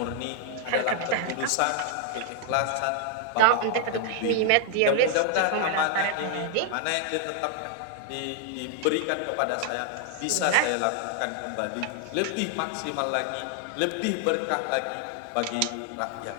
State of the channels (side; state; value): both; different; correlation 0.00